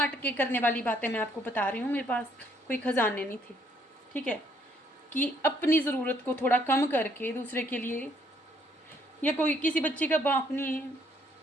के करने वाली बातें मैं आपको बता रही हूँ, मेरे पास कोई खजाने नहीं थे। ठीक है, कि अपनी ज़रूरत को थोड़ा कम करके दूसरे के लिए, या कोई किसी बच्चे का बाप नहीं है,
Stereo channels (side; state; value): both; normal; correlation 0.67